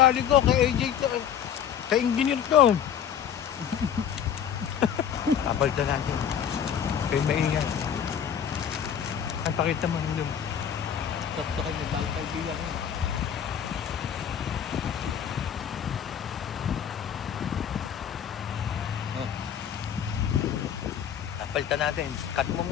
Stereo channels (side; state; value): right; quieter; 8.8 dB